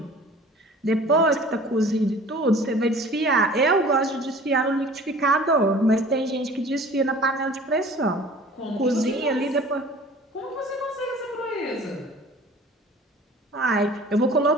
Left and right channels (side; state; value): both; normal; correlation 0.46